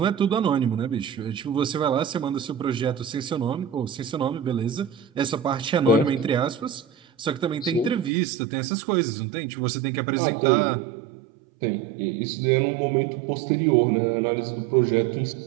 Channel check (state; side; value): drops out; left; at 8.1 s